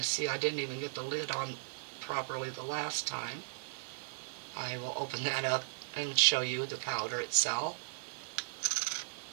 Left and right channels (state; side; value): silent; left; digital silence